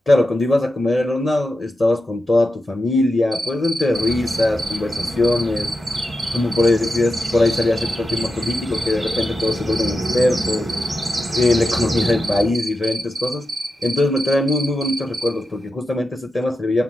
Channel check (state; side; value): normal; both; correlation 0.89